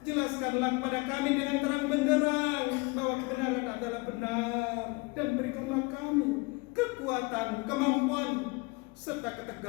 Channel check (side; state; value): right; quieter; 27.1 dB